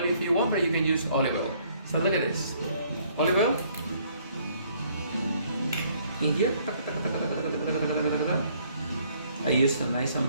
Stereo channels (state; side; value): inverted; both; correlation -0.64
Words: if you want, but you can use olive oil. So look at this. Olive oil in here. I use a nice